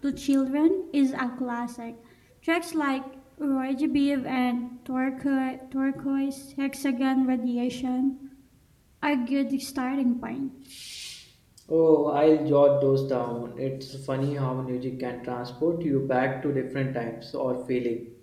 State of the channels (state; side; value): identical; both; correlation 1.00